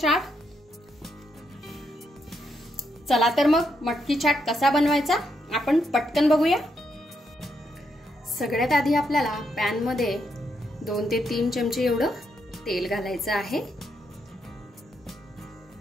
चला तर मग मटकी चाट कसा बनवायचा आपण पटकन बघूया। सगळ्यात आधी आपल्याला पॅन मध्ये 2 ते 3 चमचे एवढं तेल घालायचं आहे।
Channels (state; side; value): normal; both; correlation 0.79